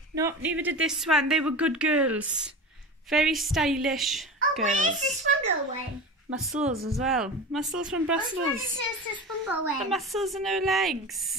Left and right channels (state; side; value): normal; both; correlation 0.30